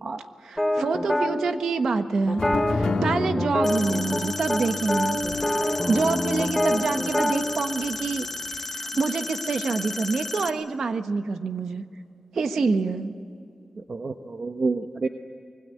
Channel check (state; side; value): normal; both; correlation 0.90